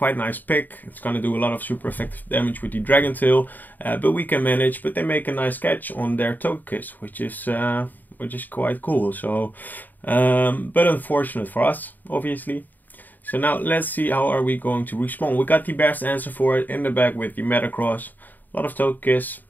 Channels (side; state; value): right; late; 0.086 ms